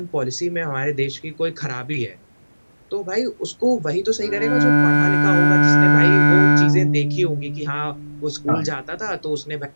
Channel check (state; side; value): inverted; both; correlation -1.00